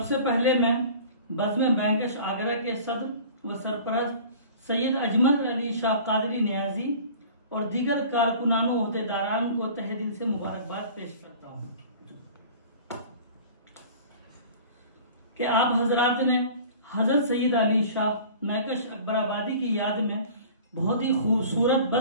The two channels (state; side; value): inverted; both; correlation -0.43